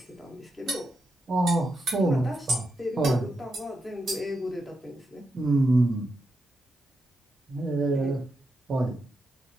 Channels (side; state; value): both; normal; correlation 0.85